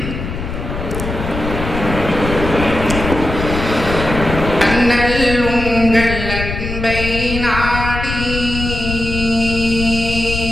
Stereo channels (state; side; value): noise; left; rumble, 5 dB below the sound